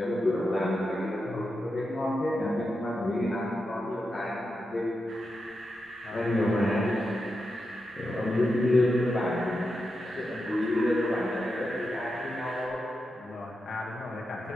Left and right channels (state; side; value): normal; both; correlation 0.88